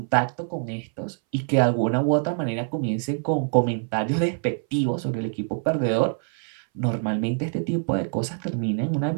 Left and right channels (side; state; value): left; silent; 60 dB below the other